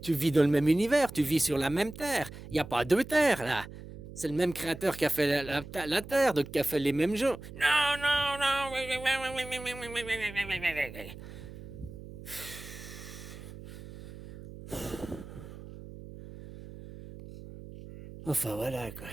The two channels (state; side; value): noise; right; hum, 14 dB below the sound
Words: vis dans le même univers, tu vis sur la même terre. Il n'y a pas deux terres, là. C'est le même créateur qui a fait la terre, donc qui a fait les mêmes gens. Non, non, non. Enfin voilà quoi.